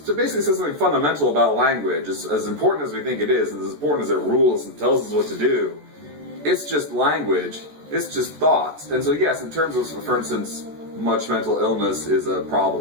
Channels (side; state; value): left; late; 14 ms